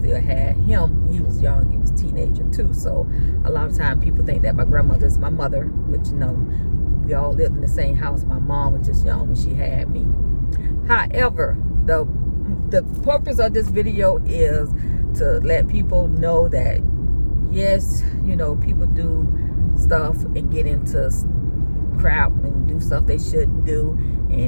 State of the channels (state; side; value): inverted; both; correlation -1.00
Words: had him. He was young. He was a teenager too. So a lot of times people think that my grandmother is my mother, which we all lived in the same house. My mom was just young when she had me. However, the purpose of this video is to let people know that yes, people do stuff and get into crap and do stuff they shouldn't do,